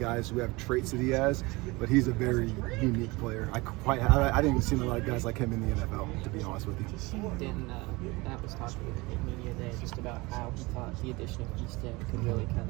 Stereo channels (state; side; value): quieter; left; 23.5 dB